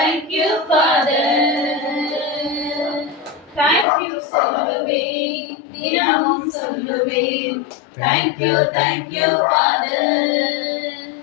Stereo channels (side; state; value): right; drops out; at 3.9 s